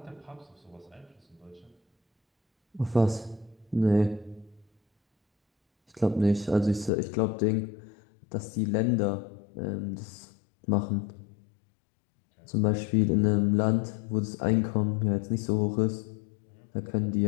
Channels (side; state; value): right; drops out; at 6.9 s